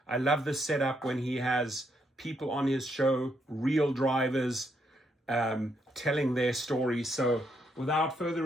I love the setup when he has people on his show, real drivers, telling their stories. So without further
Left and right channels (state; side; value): normal; both; correlation 0.76